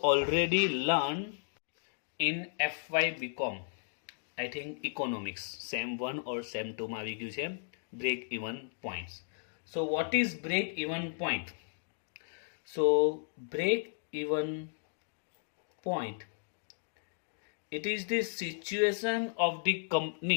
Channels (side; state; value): right; silent; digital silence